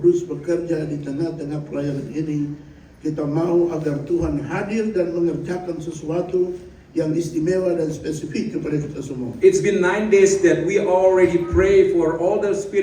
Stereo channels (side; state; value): both; identical; correlation 1.00